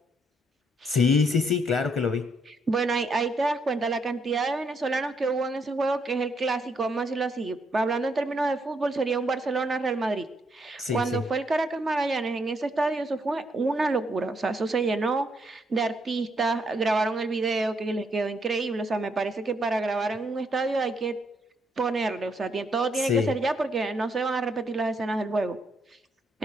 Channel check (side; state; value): both; normal; correlation 0.74